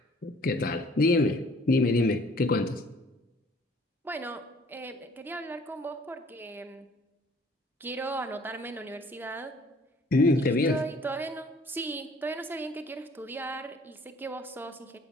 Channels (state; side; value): normal; both; correlation 0.56